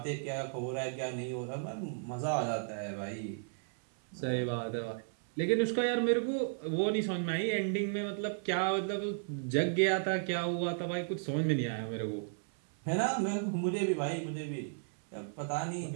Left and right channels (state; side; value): silent; left; 55 dB below the other